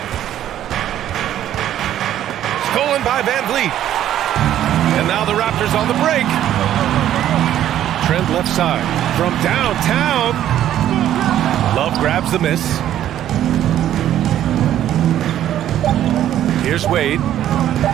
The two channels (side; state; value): left; quieter; 11.7 dB